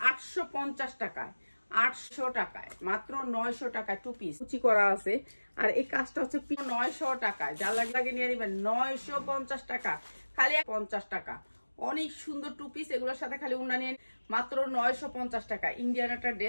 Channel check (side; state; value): both; inverted; correlation -1.00